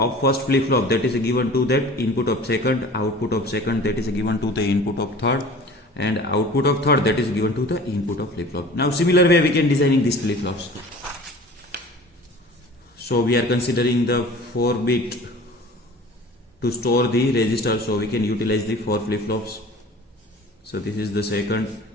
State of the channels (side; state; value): both; normal; correlation 0.43